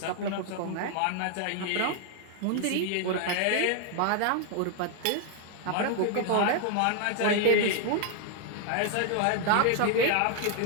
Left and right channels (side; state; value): both; different; correlation 0.00